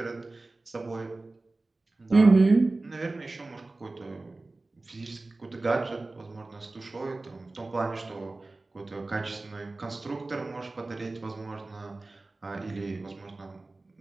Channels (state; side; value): quieter; left; 3.2 dB